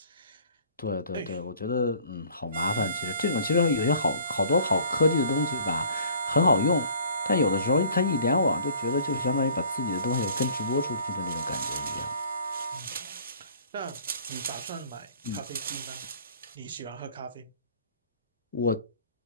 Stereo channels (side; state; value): both; inverted; correlation -0.52